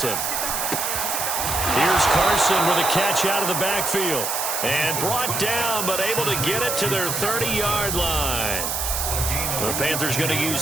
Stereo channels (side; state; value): right; noise; hiss, 1 dB below the sound